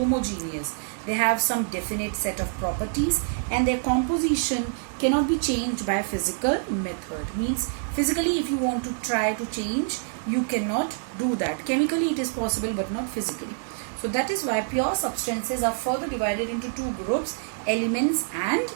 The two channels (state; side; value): silent; left; 61 dB below the other